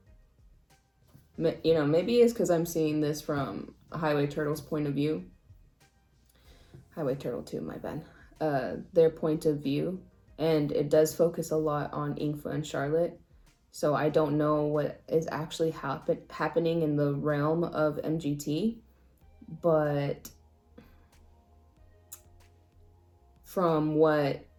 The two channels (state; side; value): identical; both; correlation 1.00